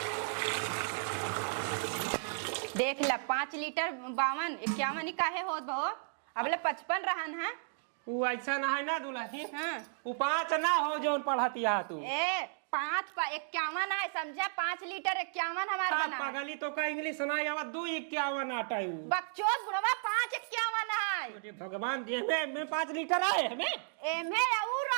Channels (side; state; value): left; silent; digital silence